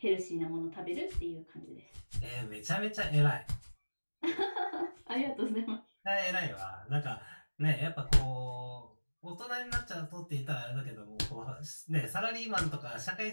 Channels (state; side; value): inverted; both; correlation -1.00